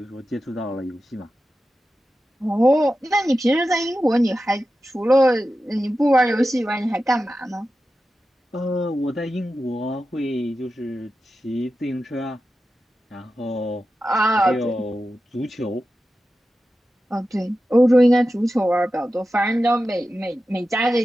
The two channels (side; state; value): both; normal; correlation 0.92